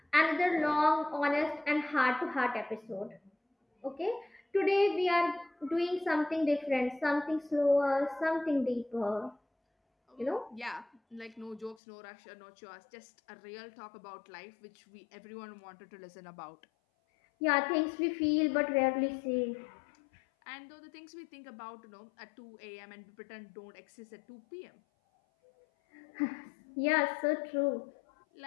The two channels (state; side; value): drops out; right; at 11.8 s